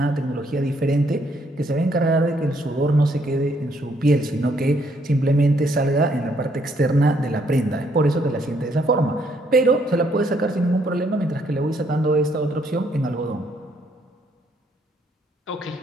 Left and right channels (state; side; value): normal; both; correlation 0.70